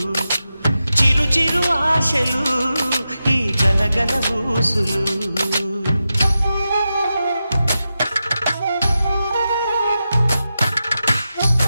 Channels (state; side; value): inverted; both; correlation -0.90